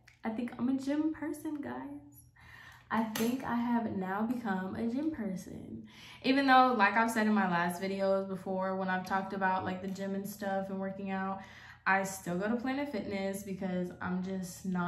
think I'm a gym person, guys. I think I have now become a gym person. Even though, like I've said in my last videos before, when I've talked about like the gym and stuff and working out, I still go to Planet Fitness because I'm just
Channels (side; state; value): both; identical; correlation 1.00